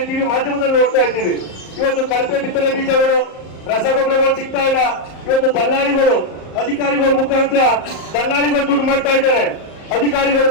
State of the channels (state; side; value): late; right; 38 ms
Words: ಟಿವಿ ಮಾಧ್ಯಮದಲ್ಲಿ ನೋಡ್ತಾ ಇದ್ದೀವಿ. ಇವತ್ತು ಕಳಪೆ ಬಿತ್ತನೆ ಬೀಜಗಳು, ರಸಗೊಬ್ಬರಗಳು ಸಿಗ್ತಾ ಇಲ್ಲ. ಇವತ್ತು ದಲ್ಲಾಳಿಗಳು, ಅಧಿಕಾರಿಗಳ ಮುಖಾಂತರ ದಲ್ಲಾಳಿಗಳು ದುಡ್ಡು ಮಾಡ್ತಾ ಇದ್ದಾರೆ, ಅಧಿಕಾರಿಗಳು